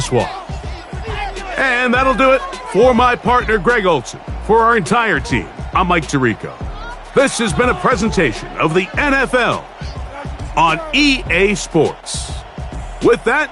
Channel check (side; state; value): both; identical; correlation 1.00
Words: one. And that'll do it for my partner, Greg Olson. For our entire team, I'm Mike Tirico. This has been a presentation of the NFL on EA Sports. With that,